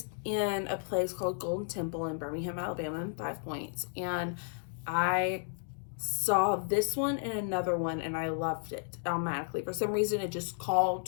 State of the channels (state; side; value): silent; right; digital silence